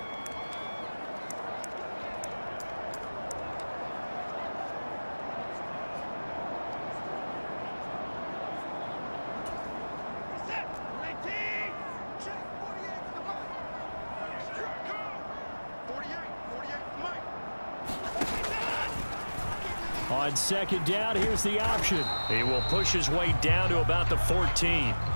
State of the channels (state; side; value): inverted; both; correlation -1.00